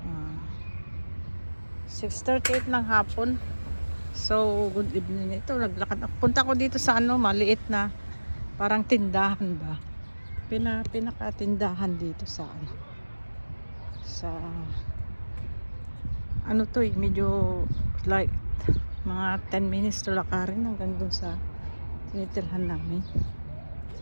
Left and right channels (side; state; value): both; inverted; correlation -1.00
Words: 6:38 ng hapon. So, good evening. Ito, naglakad. Punta ko dito sa maliit na parang tindahan ba? Pinakatindahan dito sa sa medyo like mga 10 minutes to lakarin hanggang dun sa tinitirhan namin.